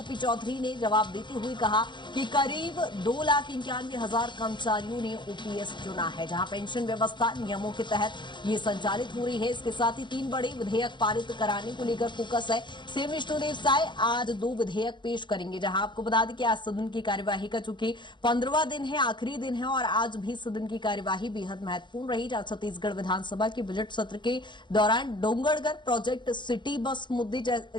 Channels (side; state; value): right; late; 0.23 ms